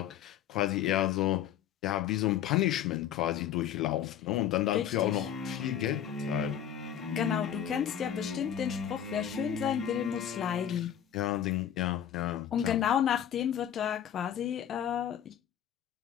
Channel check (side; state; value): right; quieter; 9.9 dB